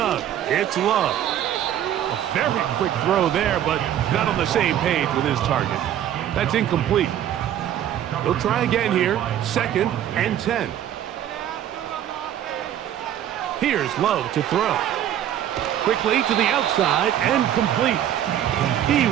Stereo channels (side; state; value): left; quieter; 11.0 dB